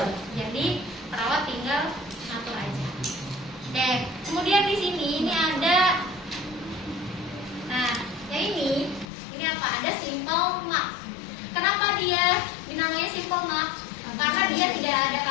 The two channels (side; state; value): right; drops out; at 9.1 s